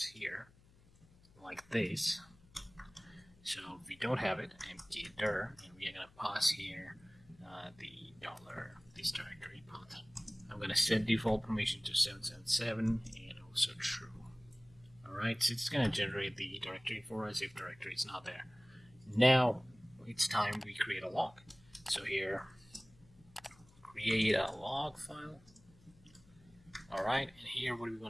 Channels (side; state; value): left; noise; hum, 26 dB below the sound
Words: here like this. So if we don't have it, empty dir, and we are gonna pass here the this directory path. I'm gonna set default permission to 777 and also true. Alright, so it's gonna generate the directory for us if directory is not there. Now it's time we create a log. So here, create a log file. Alright, and here what do we